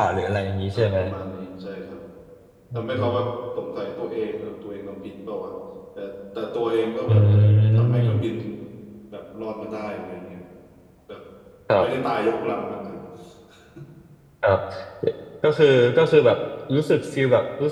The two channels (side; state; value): both; identical; correlation 1.00